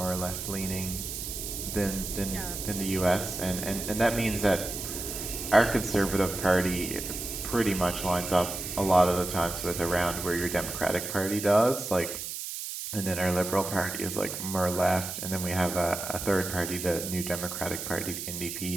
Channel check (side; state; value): right; noise; hiss, 6 dB below the sound